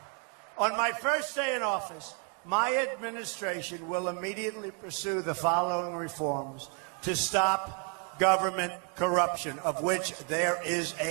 on my first day in office, my administration will immediately pursue the following reforms to stop government corruption, of which there is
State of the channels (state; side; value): quieter; left; 39.1 dB